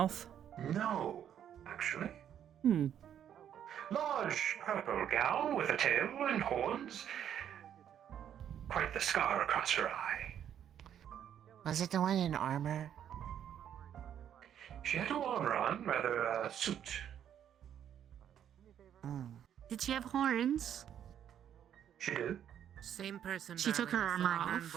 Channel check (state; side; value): quieter; left; 9.7 dB